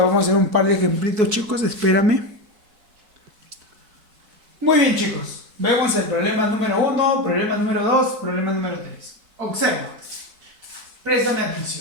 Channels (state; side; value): late; left; 4.6 ms